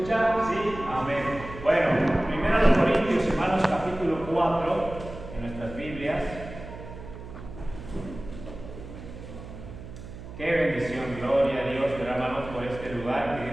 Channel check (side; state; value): right; noise; hum, 13 dB below the sound